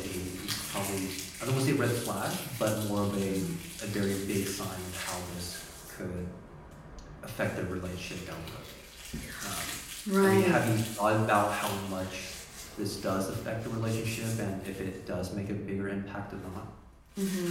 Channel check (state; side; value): identical; both; correlation 1.00